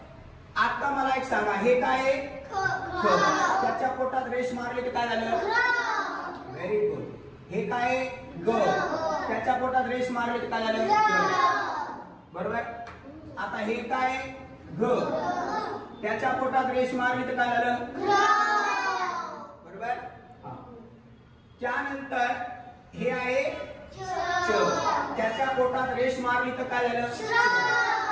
आता मला एक सांगा, हे काय? ख. त्याच्या पोटात रेष मारली तर काय झालं? Very good. हे काय? ग. त्याच्या पोटात रेष मारली तर काय झालं? बरोबर. आता हे काय? घ. त्याच्या पोटात रेष मारली तर काय झालं? बरोबर. त्यानंतर हे आहे च. त्याच्या पोटात रेष मारली तर काय झालं?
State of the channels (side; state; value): both; identical; correlation 1.00